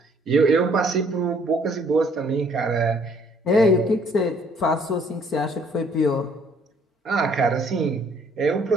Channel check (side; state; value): both; normal; correlation 0.62